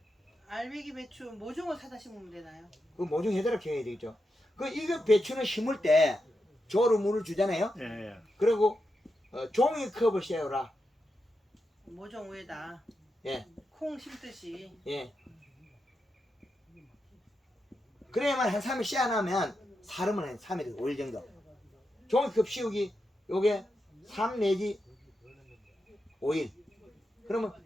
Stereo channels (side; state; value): both; normal; correlation 0.87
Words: 알배기 배추 모종을 사다 심으면 되나요? 그 모종 해달라 해야 되겠죠. 그 이거 배추는 심을 때 조로 물을 주잖아요. 예, 예. 그리고 종이컵을 씌워라. 모종 위에다 예, 콩 심듯이. 예. 그래야만 한 3일 씨앗나면 사름은 한 3일에서 5일 정도. 종이컵 씌우기 요게 3 내지 5일. 그러면